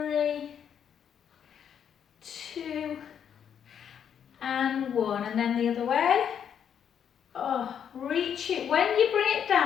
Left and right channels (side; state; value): right; quieter; 8.4 dB